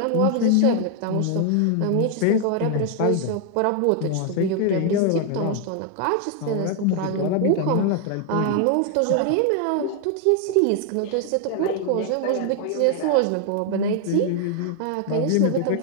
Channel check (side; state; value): both; different; correlation 0.00